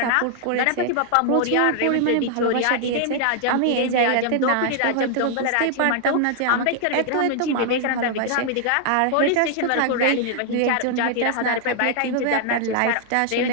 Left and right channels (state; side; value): different; both; correlation 0.00